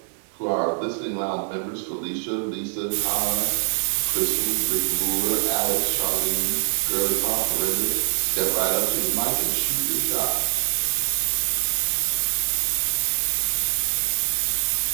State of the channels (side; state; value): left; silent; 59 dB below the other